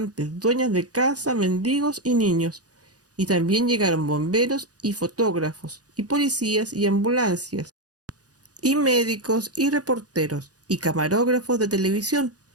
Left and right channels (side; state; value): left; late; 0.68 ms